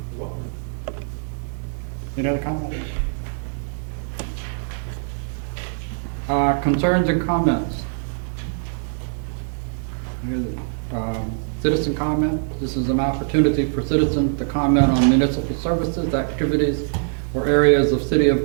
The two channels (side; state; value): left; silent; digital silence